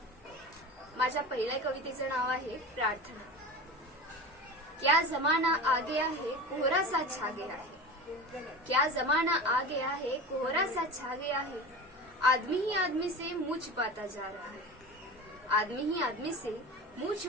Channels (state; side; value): normal; both; correlation 0.31